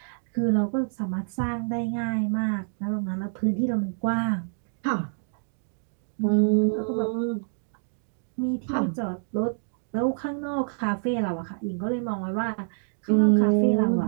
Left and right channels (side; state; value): left; silent; digital silence